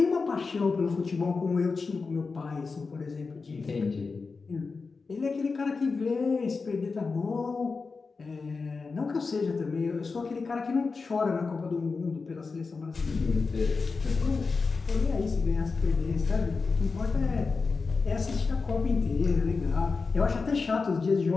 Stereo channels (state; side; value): quieter; right; 4.5 dB